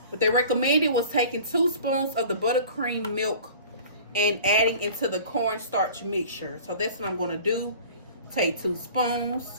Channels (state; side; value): inverted; both; correlation -0.44